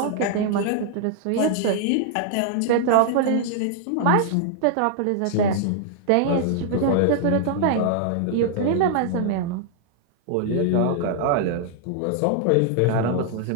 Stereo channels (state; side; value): different; both; correlation -0.01